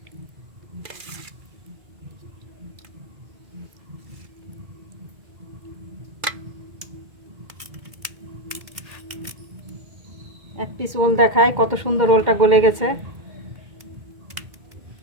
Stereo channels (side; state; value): left; late; 2.1 ms